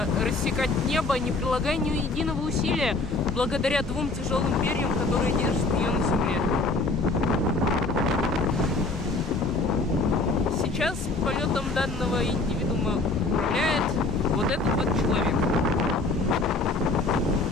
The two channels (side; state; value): right; quieter; 3.2 dB